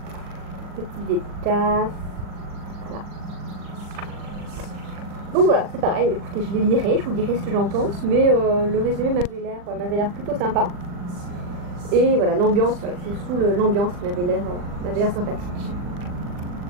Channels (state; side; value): late; left; 40 ms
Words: petite dédicace, voilà. Donc voilà, c'est pareil, écoutez, je les lirai, je vous dirai ce que j'en pense, mais le résumé m'avait l'air plutôt sympa. Et voilà, l'ambiance, voilà, c'est surtout l'ambiance qui m'avait l'air sympathique.